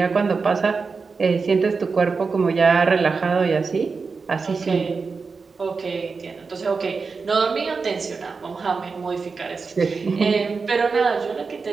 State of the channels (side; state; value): left; quieter; 4.7 dB